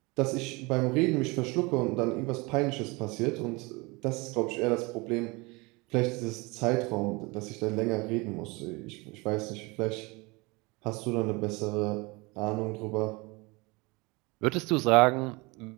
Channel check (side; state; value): left; quieter; 25.8 dB